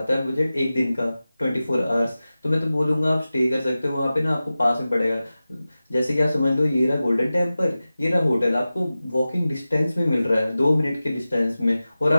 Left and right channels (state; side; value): inverted; both; correlation -0.96